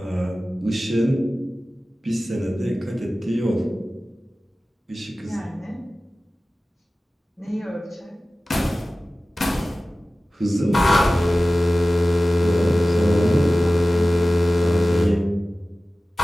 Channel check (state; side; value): normal; both; correlation 0.96